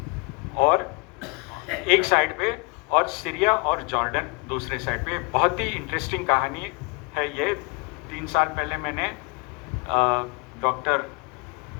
और एक साइड पे और सीरिया और जॉर्डन दूसरे साइड पे। बहुत ही इंटरेस्टिंग कहानी है ये। 3 साल पहले मैंने डॉक्टर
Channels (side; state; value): right; quieter; 29.5 dB